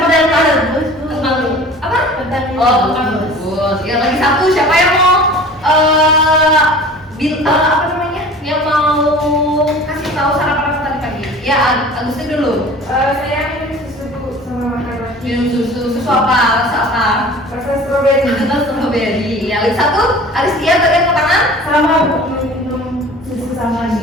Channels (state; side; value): normal; both; correlation 0.42